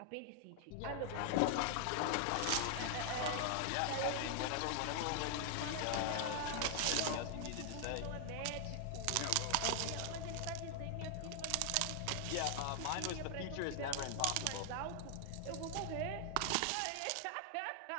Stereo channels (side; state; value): both; different; correlation 0.00